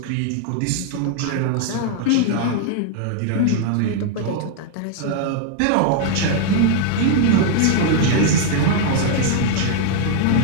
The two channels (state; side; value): different; both; correlation 0.00